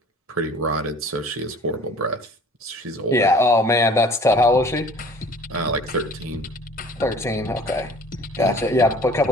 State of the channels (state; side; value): normal; both; correlation 0.49